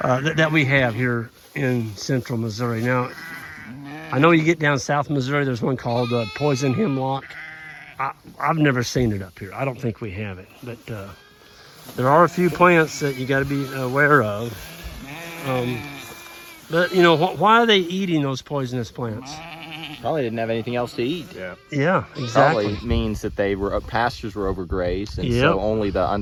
that we have here in central Missouri. Now, I know you get down south Missouri, there's one called poison hemlock. I've never seen it up here. I don't think we have it, but there are a few plants that you got to be aware of. But you know, why are they eating those poisonous plants? Probably didn't have anything else to eat. Yeah. Yeah, exactly. Probably means that they were pastures were overgrazed, and Yep. so only the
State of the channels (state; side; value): identical; both; correlation 1.00